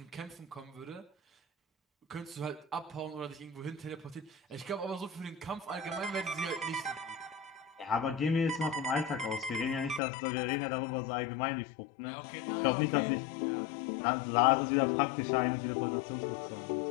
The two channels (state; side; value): drops out; right; at 10.0 s